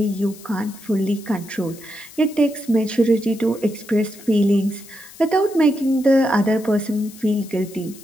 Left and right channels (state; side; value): noise; left; hiss, 20 dB below the sound